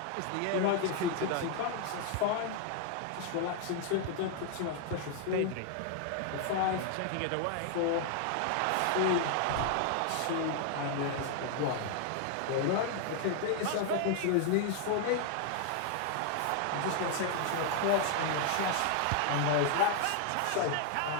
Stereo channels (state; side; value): different; both; correlation 0.00